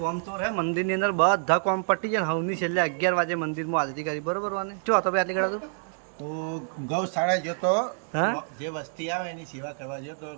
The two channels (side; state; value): left; silent; digital silence